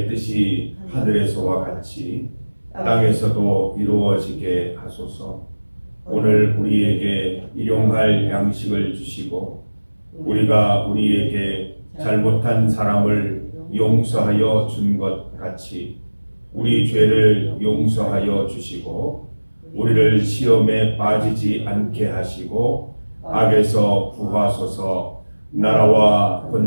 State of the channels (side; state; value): both; inverted; correlation -1.00